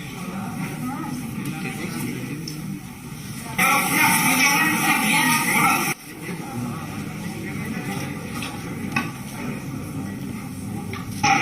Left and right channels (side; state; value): both; identical; correlation 1.00